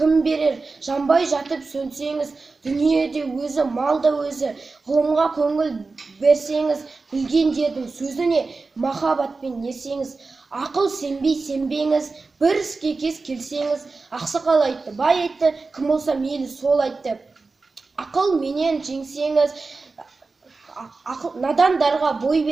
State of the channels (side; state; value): left; quieter; 4.0 dB